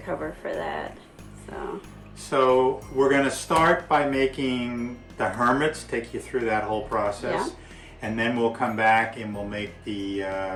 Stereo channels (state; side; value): identical; both; correlation 1.00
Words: for that. So we're going to start by making the hermits, take you through that whole process. Yeah. And then we'll come back and we'll make the